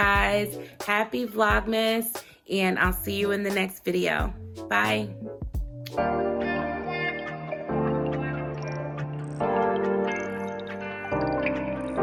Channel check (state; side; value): identical; both; correlation 1.00